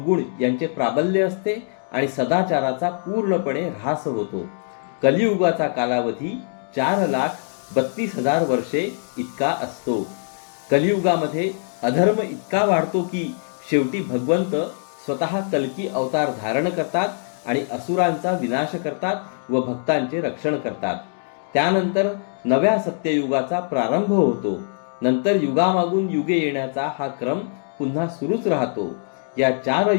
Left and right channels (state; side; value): silent; right; digital silence